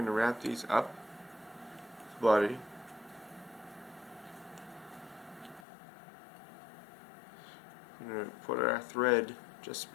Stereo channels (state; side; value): drops out; right; at 5.7 s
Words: going to wrap these up the body. We're going to put our thread just